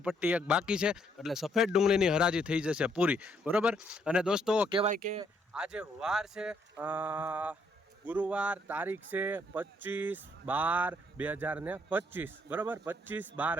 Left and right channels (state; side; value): normal; both; correlation 0.71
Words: પટ્ટી એક બાકી છે, એટલે સફેદ ડુંગળીની હરાજી થઈ જશે પૂરી, બરોબર. અને દોસ્તો, કહેવાય કે આજે વાર છે ગુરુવાર, તારીખ છે 25/12/2025, બરાબર.